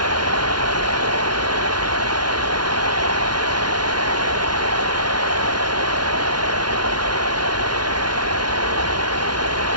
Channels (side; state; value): left; late; 0.70 ms